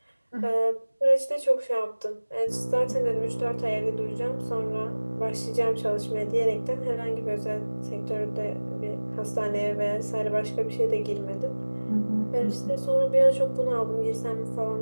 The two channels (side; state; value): both; inverted; correlation -1.00